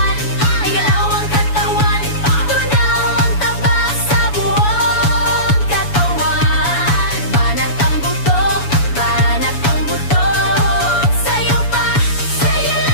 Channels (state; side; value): late; right; 7.0 ms